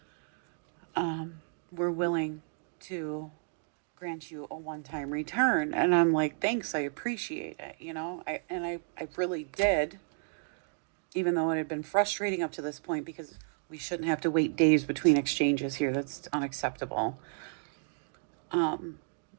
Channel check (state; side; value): silent; left; 56 dB below the other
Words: we're willing to grant you a one-time return. And I'm like, thanks, I appreciate it, I really did, even though it had been frustrating up to this point because we shouldn't have to wait days between exchanges here. That's unacceptable.